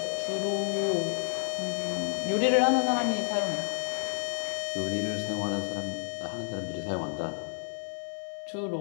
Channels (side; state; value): right; silent; 58 dB below the other